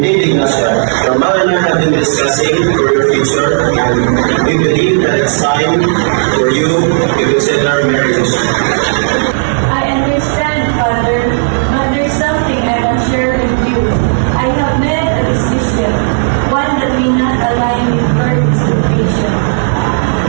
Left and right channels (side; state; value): left; silent; digital silence